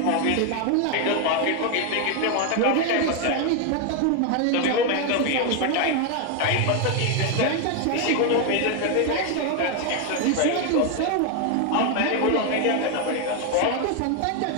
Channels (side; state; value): both; different; correlation 0.01